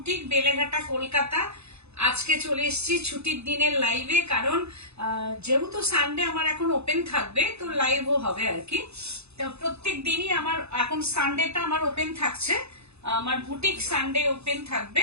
বেলেঘাটা, কলকাতা। আজকে চলে এসেছি ছুটির দিনের লাইভে, কারণ যেহেতু সানডে আমার এখন ওপেন থাকবে, তো লাইভও হবে আর কি। তো প্রত্যেক দিনই আমার এখন সানডেটা আমার ওপেন থাকছে, আমার বুটিক সানডে ওপেন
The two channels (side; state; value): left; late; 0.80 ms